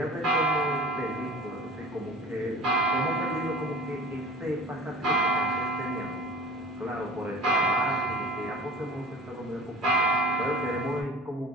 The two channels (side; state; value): both; normal; correlation 0.40